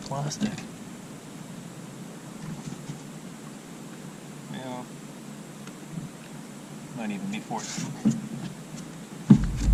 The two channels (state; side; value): identical; both; correlation 1.00